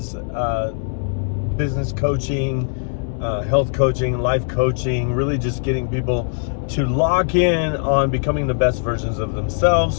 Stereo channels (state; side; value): silent; right; digital silence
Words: business coaching, health coaching, life coaching, really just getting people to lock in on becoming the best versions of